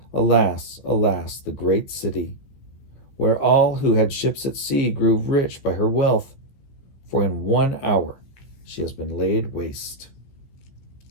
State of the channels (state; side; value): late; right; 15 ms